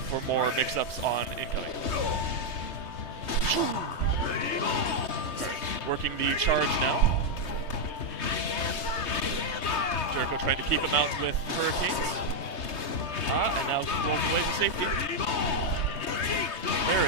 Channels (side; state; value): right; late; 3.2 ms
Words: more mix-ups on incoming. Working the charge now. JKO trying to keep him out with Hurricanes. And now rolls away to safety. There